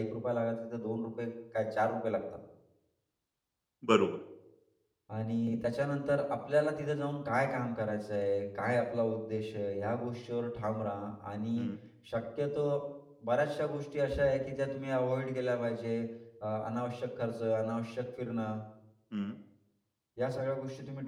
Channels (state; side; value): identical; both; correlation 1.00